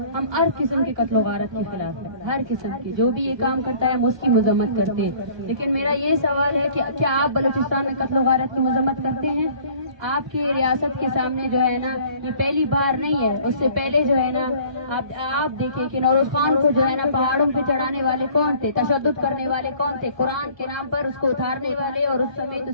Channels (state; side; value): late; left; 1.3 ms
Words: हम हर किस्म के कत्ल वारत के खिलाफ है, हर किस्म की। जो भी ये काम करता है हम उसकी मजम्मत करते हैं। लेकिन मेरा ये सवाल है कि क्या आप बलूचिस्तान में कत्ल वारत की मजम्मत करते हैं? आपके रियासत के सामने जो है ना, ये पहली बार नहीं है। उससे पहले जो है ना, आप देखिए कि नौरोज खान को जो है ना पहाड़ों पे चढ़ाने वाले कौन थे, तशद्दुद करने वाले कौन थे, कुरान के नाम पर उसको उतारने वाले और उस